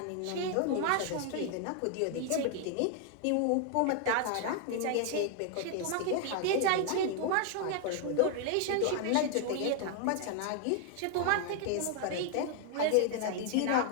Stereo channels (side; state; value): both; different; correlation 0.00